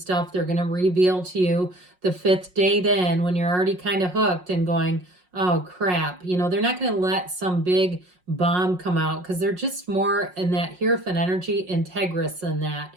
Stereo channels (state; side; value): late; left; 5.5 ms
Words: they're going to reveal to you the 5th date in when you're already kind of hooked and going, oh crap. You know, they're not going to let some big bomb come out, because they're just more in that Hierophant energy, integrous than that.